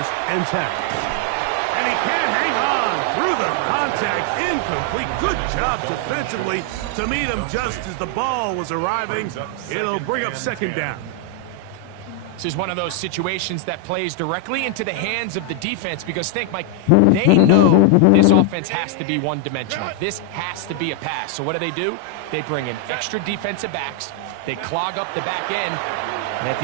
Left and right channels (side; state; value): both; different; correlation 0.00